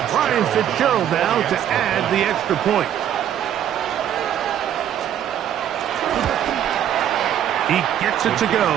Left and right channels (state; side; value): quieter; left; 10.3 dB